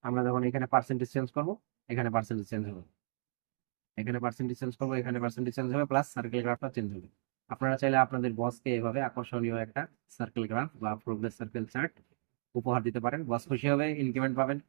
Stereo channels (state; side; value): silent; left; digital silence